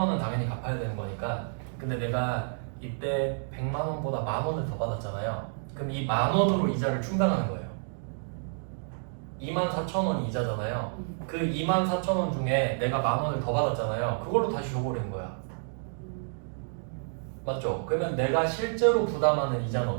당연히 갚아야 되는 거니까. 근데 내가 이때 100만 원보다 만 원을 더 받았잖아요. 그럼 이 만 원으로 이자를 충당하는 거예요. 2만 4천 원이 이자잖아요. 그 2만 4천 원 중에 내가 만 원을 더 받았잖아요. 그걸로 다시 줘버리는 거야. 맞죠? 그러면 내가 실제로 부담하는 이자는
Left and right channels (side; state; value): left; silent; digital silence